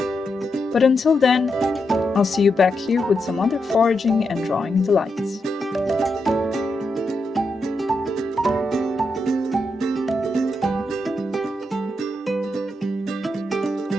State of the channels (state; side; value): normal; both; correlation 0.84